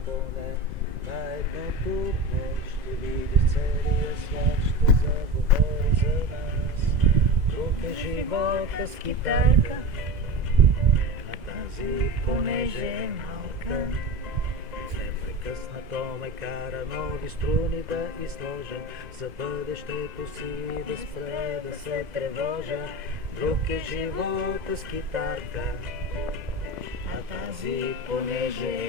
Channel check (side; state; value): left; late; 2.0 ms